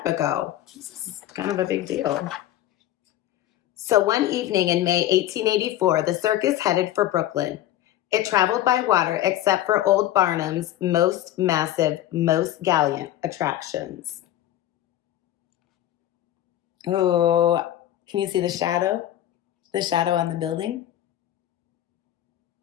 ago. This is kind of a big deal. So one evening in May 1884, the circus headed for Brooklyn. It traveled by water except for old Barnum's most massive, most gallant attractions. Oh, can you see the shadow? The shadow on the building?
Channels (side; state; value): right; quieter; 13.1 dB